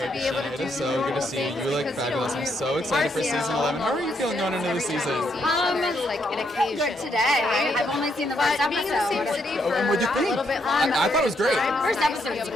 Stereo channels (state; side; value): normal; both; correlation 0.75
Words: to be able to do so good to see you. You look fabulous. I'm so excited for season 11. How are you feeling going into the season? It's like an occasion. Good today. I've only seen the first episode. Being in the same city for What'd you a think? little bit longer. I thought it was great. First episode was